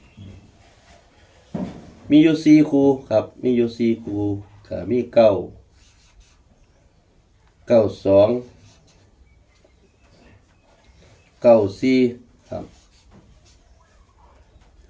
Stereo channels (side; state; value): both; identical; correlation 1.00